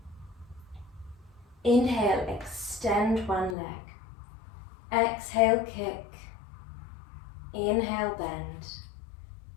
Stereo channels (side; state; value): right; drops out; at 3.6 s